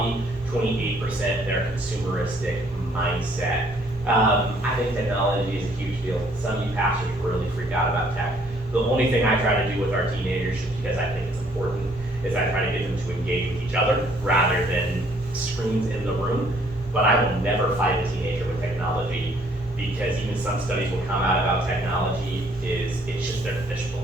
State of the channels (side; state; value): both; normal; correlation 0.63